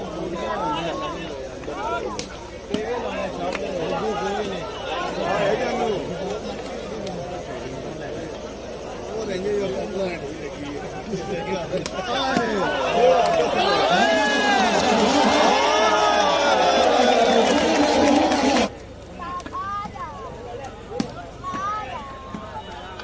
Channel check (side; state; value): both; identical; correlation 1.00